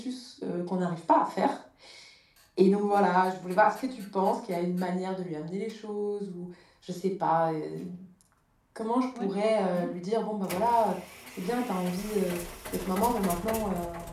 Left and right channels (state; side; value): identical; both; correlation 1.00